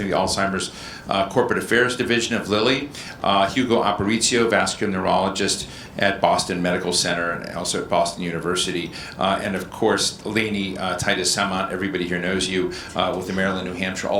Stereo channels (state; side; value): identical; both; correlation 1.00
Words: of the Alzheimer's Corporate Affairs Division of Lilly, Hugo Aparicio, vascular neurologist at Boston Medical Center and also at Boston University, and of course Lainey, Titus, Samant, everybody here knows you, with the Maryland, New Hampshire